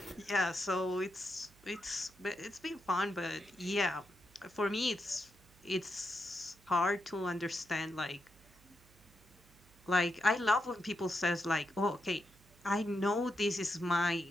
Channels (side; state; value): right; noise; hum, 27 dB below the sound